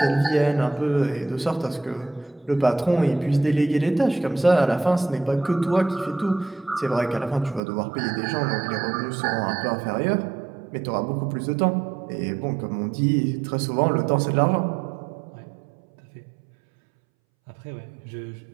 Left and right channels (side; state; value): left; drops out; at 7.6 s